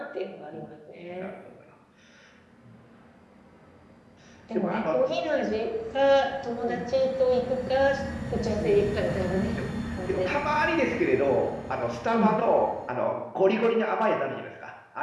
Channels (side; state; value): both; identical; correlation 1.00